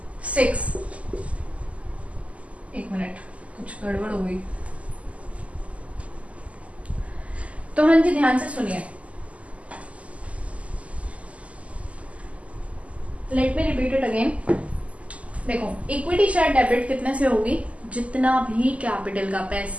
6, एक मिनट कुछ गड़बड़ हो गई, तो हाँ जी ध्यान से सुनिए, let me repeat it again. देखो इक्विटी शेयर डेबिट कितने से होगी? जितना भी कैपिटल का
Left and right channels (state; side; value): late; left; 0.066 ms